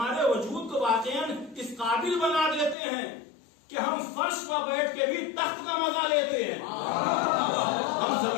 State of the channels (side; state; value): right; drops out; at 2.8 s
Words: وجود کو واقعاً اس قابل بنا دیتے ہیں کہ ہم فرش پر بیٹھ کے بھی تخت کا مزہ لیتے ہیں، ہم